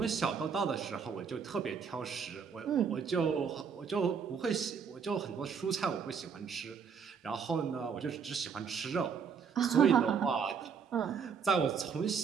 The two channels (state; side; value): quieter; left; 6.5 dB